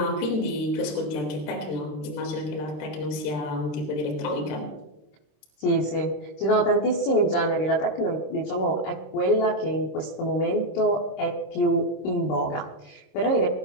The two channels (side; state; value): right; late; 26 ms